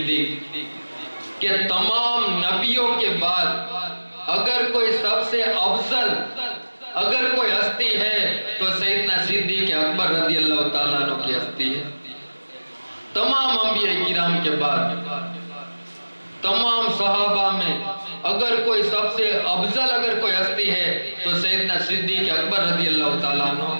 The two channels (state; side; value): inverted; both; correlation -1.00